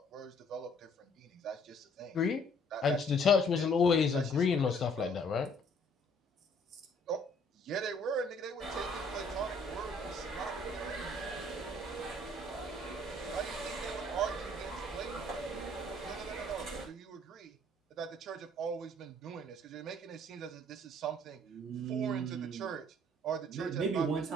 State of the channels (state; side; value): normal; both; correlation 0.60